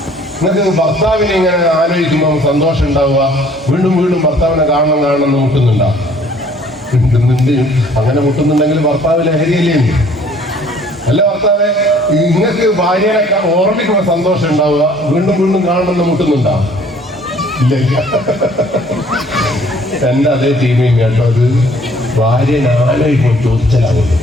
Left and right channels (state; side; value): normal; both; correlation 0.57